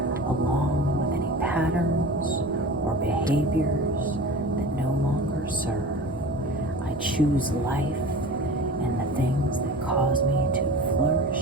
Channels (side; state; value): both; normal; correlation 0.36